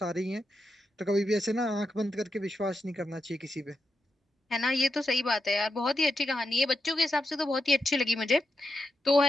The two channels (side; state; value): both; normal; correlation 0.86